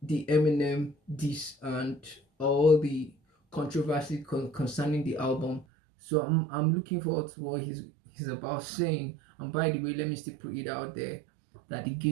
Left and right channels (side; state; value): left; drops out; at 5.7 s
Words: the Eminem diss and all the controversy concerning the album. So I'm looking forward to what he's about saying. And by the way, let me still put it out there that the